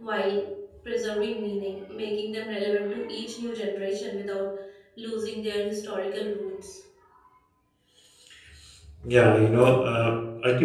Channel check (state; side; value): identical; both; correlation 1.00